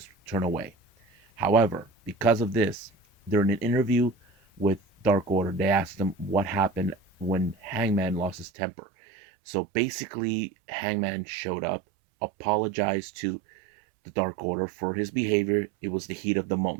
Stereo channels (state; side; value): drops out; left; at 8.5 s